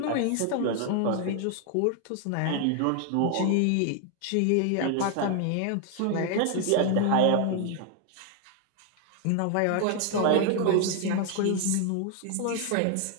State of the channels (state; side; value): different; both; correlation 0.00